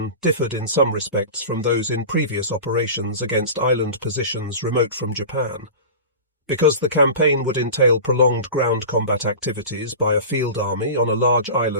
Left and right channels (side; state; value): both; inverted; correlation -0.33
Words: differed in some respects from those in previous operations against island positions remote from Japan. Because the campaign would entail prolonged ground combat activities by a field army on a large